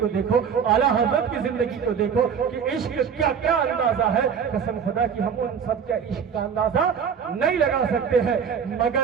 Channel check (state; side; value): quieter; left; 7.1 dB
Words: دیکھو، اعلیٰ حضرت کی زندگی کو دیکھو کہ عشق کیا کیا اندازہ ہے۔ قسم خدا کی ہم ان سب کا عشق کا اندازہ نہیں لگا سکتے ہیں،